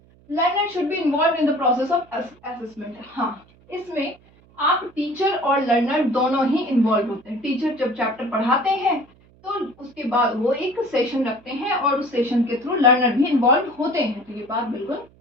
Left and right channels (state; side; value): noise; right; hum, 29 dB below the sound